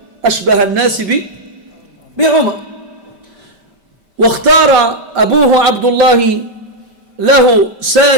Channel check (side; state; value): left; late; 5.1 ms